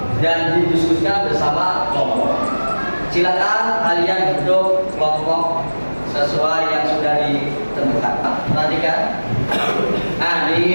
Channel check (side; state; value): both; inverted; correlation -1.00